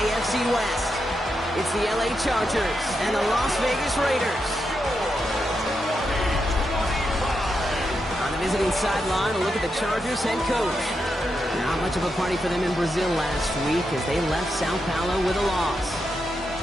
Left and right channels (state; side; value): normal; both; correlation 0.85